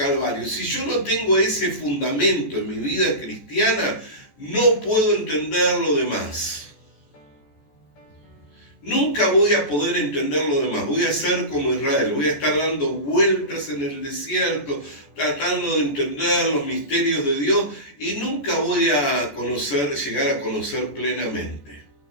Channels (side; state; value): right; late; 14 ms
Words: Si yo no tengo ese fundamento en mi vida cristiana, no puedo entender lo demás. Nunca voy a poder entender lo demás. Voy a ser como Israel, voy a estar dando vueltas en el desierto, tratando de entender los misterios de Dios, y nunca voy a llegar a conocer plenamente.